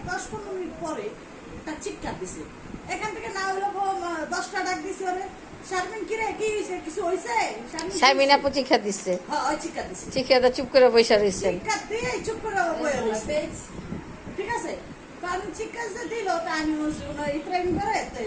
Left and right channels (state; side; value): identical; both; correlation 1.00